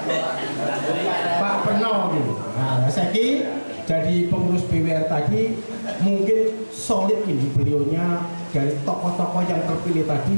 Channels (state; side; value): inverted; both; correlation -1.00